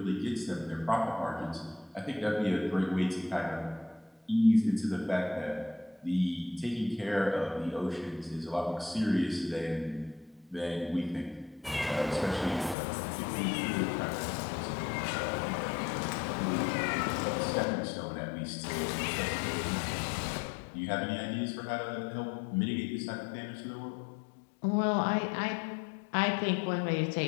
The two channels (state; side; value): drops out; right; at 12.8 s